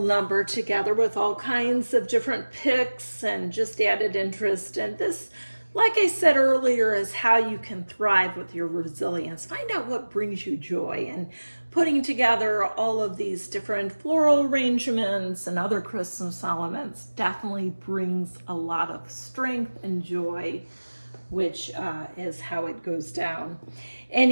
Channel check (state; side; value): inverted; both; correlation -1.00